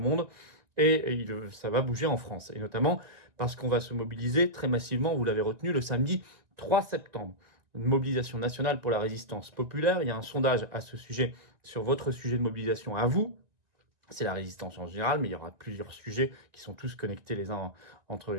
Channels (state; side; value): late; left; 1.9 ms